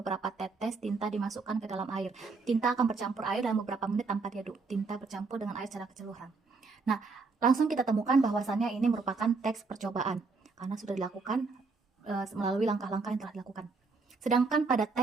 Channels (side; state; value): left; quieter; 4.3 dB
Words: tetes tinta dimasukkan ke dalam air. Tinta akan bercampur air dalam beberapa menit tanpa diaduk. Tinta bercampur dengan air secara keseluruhan. Nah, langsung kita temukan bahwasannya ini merupakan teks percobaan karena sudah dilakukan melalui langkah-langkah yang telah dilakukan. Sedangkan pada